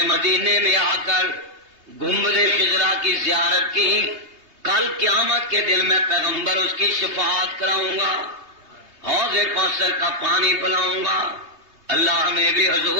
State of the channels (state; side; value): late; left; 3.2 ms